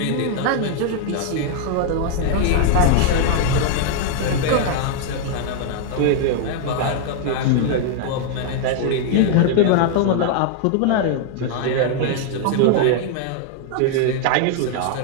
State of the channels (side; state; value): both; different; correlation 0.00